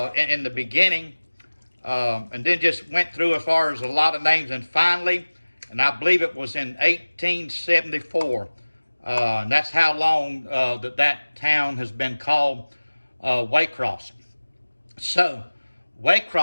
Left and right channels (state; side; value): inverted; both; correlation -1.00